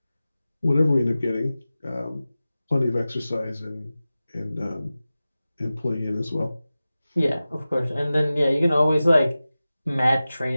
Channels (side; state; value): both; inverted; correlation -0.96